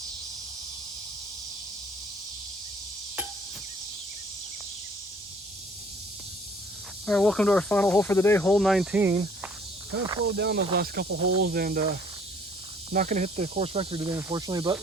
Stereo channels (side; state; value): both; normal; correlation 0.57